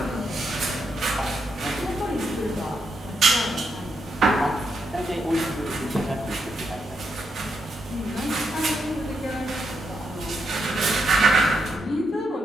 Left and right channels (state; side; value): normal; both; correlation 0.81